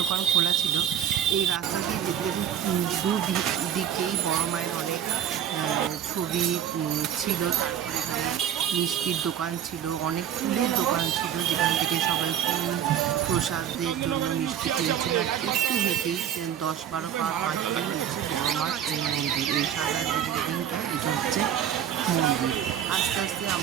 খোলা ছিল। এই রাস্তা দিয়ে যেতে যেতে দুদিকেই বড় মায়ের অনেক ছবি ছিল। তারপরে এখানে মিষ্টির দোকান ছিল, অনেক ফুলের দোকান ছিল, যেখান থেকে সবাই ফুল প্রসাদের জন্য মিষ্টি কিনছিল। আর একটু হেঁটেই 10-12 পা হাঁটলেই হচ্ছে বড় মার এই মন্দির। এই সাদা যে বিল্ডিংটা, এটা হচ্ছে মন্দির। আস্তে আস্তে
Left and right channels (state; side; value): quieter; left; 9.6 dB